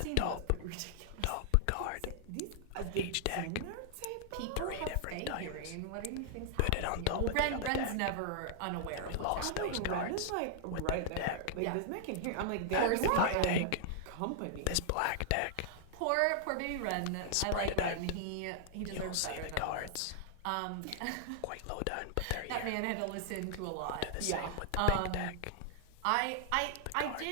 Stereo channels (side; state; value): both; different; correlation -0.01